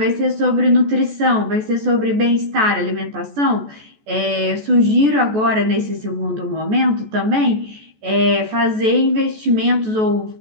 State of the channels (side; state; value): left; late; 14 ms